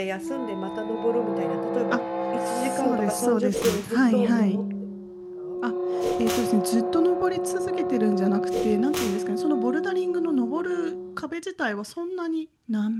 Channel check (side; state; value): both; identical; correlation 1.00